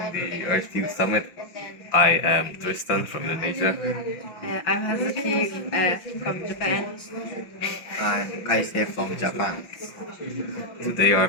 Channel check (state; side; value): late; right; 5.9 ms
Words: the Earth Youth Summit. I am Tristan from Indonesia. I'm Hazuki from Japan. I'm Kaise from Japan. Today our